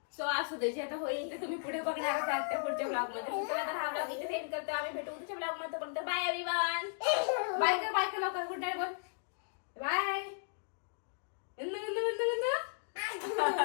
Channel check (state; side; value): silent; right; digital silence